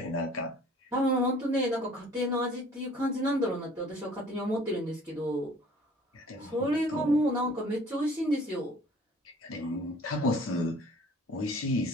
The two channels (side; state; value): both; normal; correlation 0.52